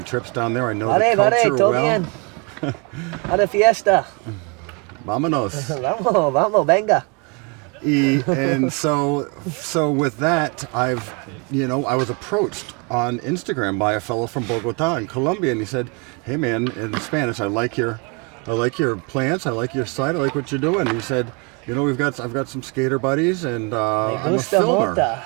trips down there. I know the culture todo well. bien. A la fiesta. Vámonos. Vamos, venga. And so with that, I was approached on Instagram by a fellow from Bogota in Colombia, and he said, "Hey man," in Spanish, I like your plants, I like your site, I like what you're doing." He said, I've got some skater buddies, and I'm a filmer. Mota.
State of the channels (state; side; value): quieter; left; 32.5 dB